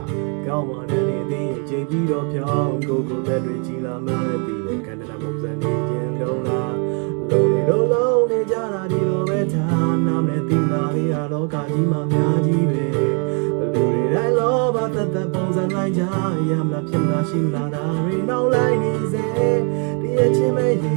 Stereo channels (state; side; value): quieter; left; 38.0 dB